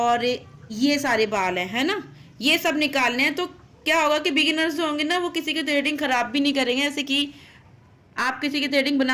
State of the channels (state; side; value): identical; both; correlation 1.00